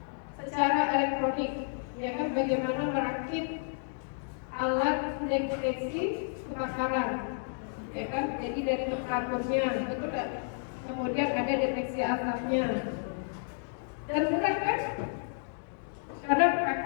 secara elektronik, ya kan, bagaimana merakit alat deteksi kebakaran, ya kan, jadi dari temperaturnya, betul kan? Kemudian ada deteksi asapnya, dan mudah kan? Karena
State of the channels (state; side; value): silent; right; digital silence